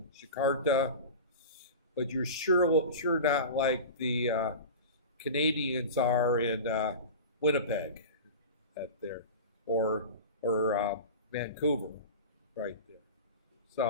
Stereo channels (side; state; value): both; inverted; correlation -0.30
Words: Jakarta, but you're sure not like the Canadians are in Winnipeg, there, or Vancouver, right there.